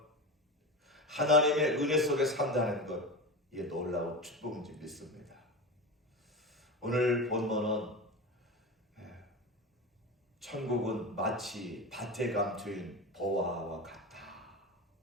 하나님의 은혜 속에 산다는 것, 이게 놀라운 축복인지 믿습니다. 오늘 본문은 천국은 마치 밭에 감추인 보화와 같다.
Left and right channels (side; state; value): both; normal; correlation 0.25